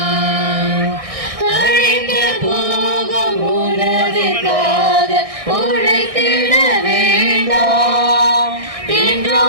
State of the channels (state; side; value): late; left; 1.6 ms